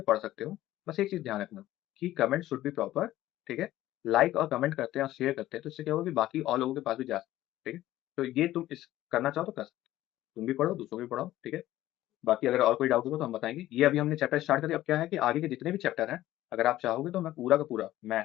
पढ़ सकते हो। बस एक चीज़ ध्यान रखना कि कमेंट शुड बी प्रॉपर, ठीक है। लाइक और कमेंट करते हैं और शेयर करते हैं तो इससे क्या होगा कि बाकी और लोगों के पास भी जा सकते हैं, ठीक है। तो ये तुम इस करना चाहो तो कर सकते हो। तुम भी पढ़ो, दूसरों को भी पढ़ाओ, ठीक है। बाकी अगर और कोई डाउट होगा तो हम बताएँगे। ये अभी हमने चैप्टर स्टार्ट कर दिया, अब क्या है कि आगे के जितने भी चैप्टर हैं, अगर आप चाहोगे तो मैं पूरा का पूरा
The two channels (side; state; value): right; quieter; 14.7 dB